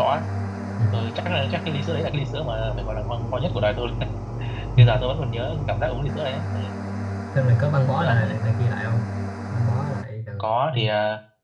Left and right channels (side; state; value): both; identical; correlation 1.00